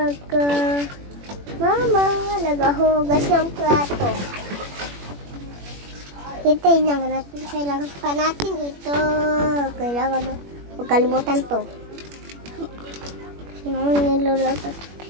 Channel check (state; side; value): late; left; 21 ms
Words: ko. Mama, nagahugas ng plato. Hintayin lang natin. Kailangan pa natin ito. Kailangan, huwag kalimutan to. Niluluto.